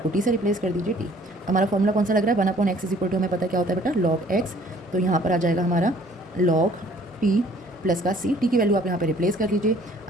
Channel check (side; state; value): both; normal; correlation 0.56